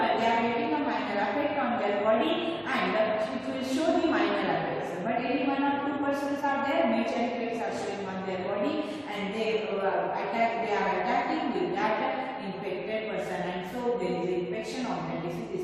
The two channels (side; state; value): both; identical; correlation 1.00